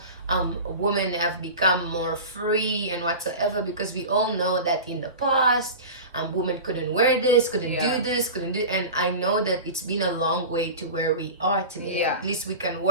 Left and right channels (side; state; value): both; inverted; correlation -0.31